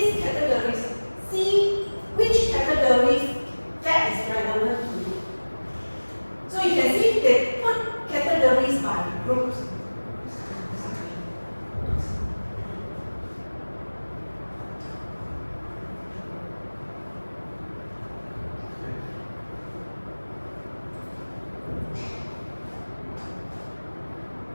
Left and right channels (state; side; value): inverted; both; correlation -1.00